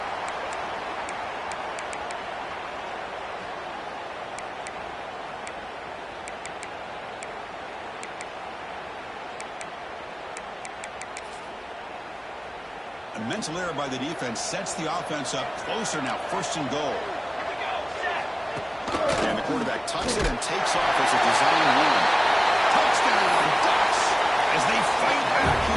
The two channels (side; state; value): both; identical; correlation 1.00